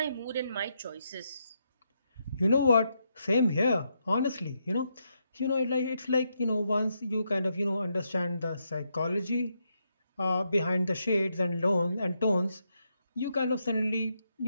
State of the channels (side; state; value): both; inverted; correlation -0.80